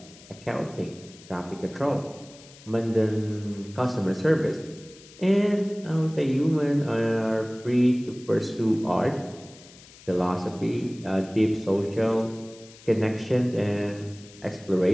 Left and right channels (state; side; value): noise; left; hiss, 22 dB below the sound